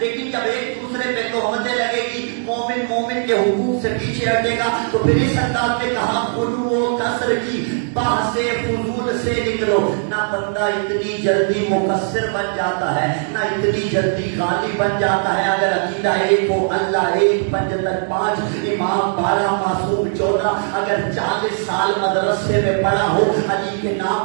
جب ایک دوسرے پہ تہمتیں لگے گی، مومن مومن کے حقوق سے پیچھے ہٹے گا، تو پھر اس انداز میں کہا غلو و کسر کی بحث فضول سے نکلو. نہ بندہ اتنی جلدی مقصر بن جاتا ہے، نہ اتنی جلدی غالب بن جاتا ہے. اگر عقیدہ ایک ہو، اللہ ایک، پنجتن 5، امام 12، معصوم 14، اگر 40 سال مدرسے میں پڑھا ہو، علی کے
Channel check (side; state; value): left; silent; digital silence